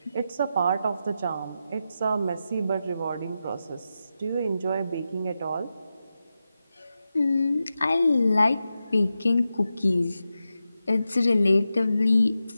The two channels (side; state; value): both; inverted; correlation -0.90